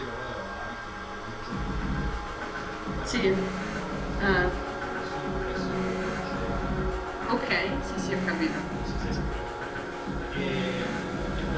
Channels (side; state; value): both; identical; correlation 1.00